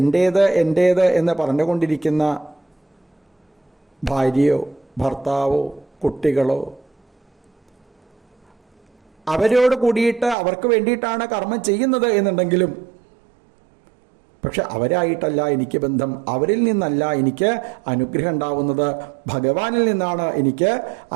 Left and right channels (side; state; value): left; drops out; at 10.4 s